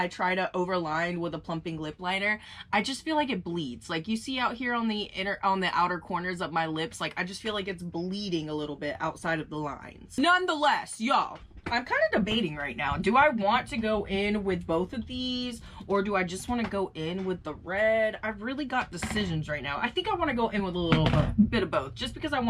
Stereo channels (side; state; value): both; identical; correlation 1.00